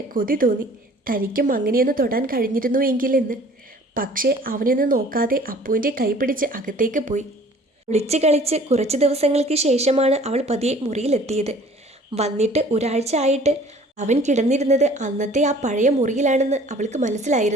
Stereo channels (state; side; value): normal; both; correlation 0.51